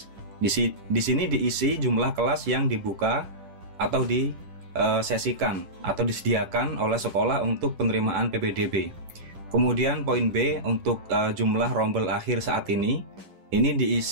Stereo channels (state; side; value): late; left; 10 ms